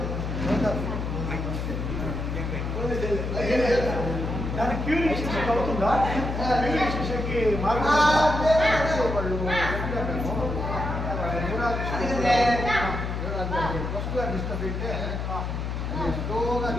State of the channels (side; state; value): left; noise; hum, 3 dB below the sound